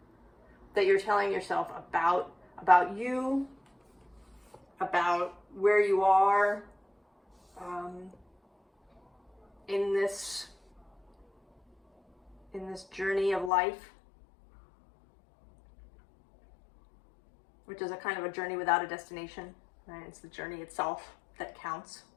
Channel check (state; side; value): drops out; right; at 13.5 s